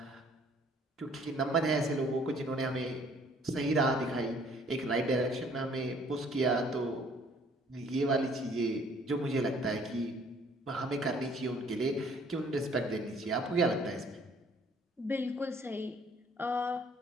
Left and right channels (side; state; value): both; normal; correlation 0.59